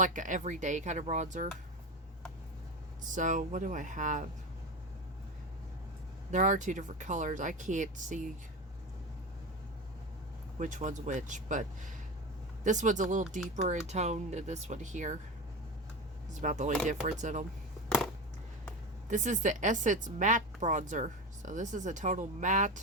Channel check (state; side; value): normal; both; correlation 0.22